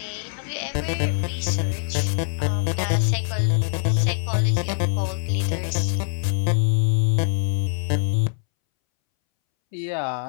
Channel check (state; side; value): silent; right; 63 dB below the other